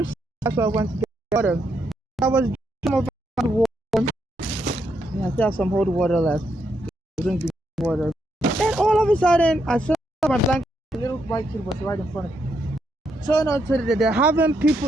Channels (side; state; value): both; normal; correlation 0.78